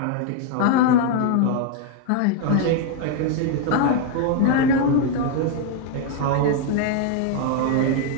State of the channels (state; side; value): different; both; correlation 0.00